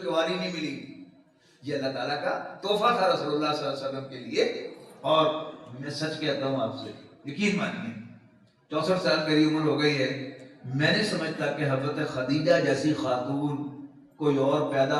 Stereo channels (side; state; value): both; identical; correlation 1.00